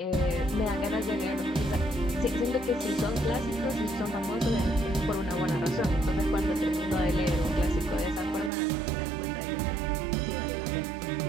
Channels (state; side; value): drops out; left; at 8.5 s